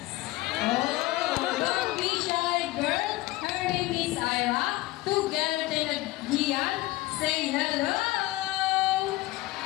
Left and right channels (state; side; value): quieter; right; 18.7 dB